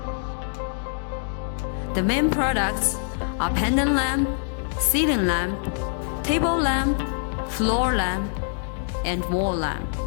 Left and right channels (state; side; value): silent; right; digital silence